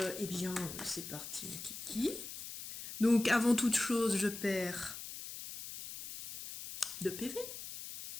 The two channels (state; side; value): noise; left; hiss, 9 dB below the sound